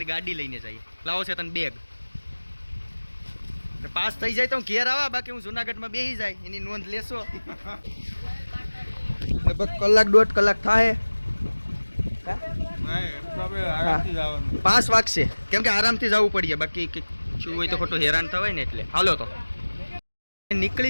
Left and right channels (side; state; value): both; inverted; correlation -1.00